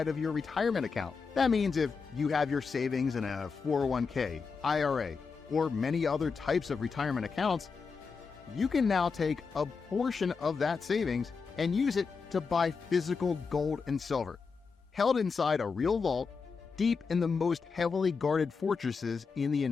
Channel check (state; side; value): quieter; right; 5.1 dB